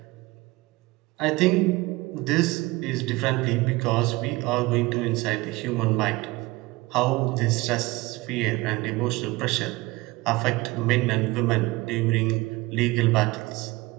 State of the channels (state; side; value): quieter; left; 21.6 dB